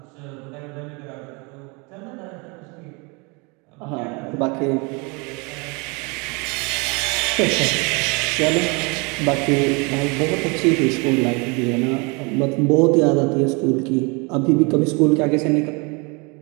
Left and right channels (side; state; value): left; quieter; 29.8 dB